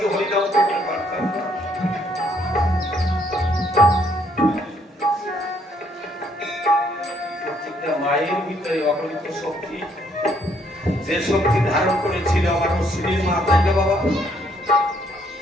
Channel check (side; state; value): both; normal; correlation 0.68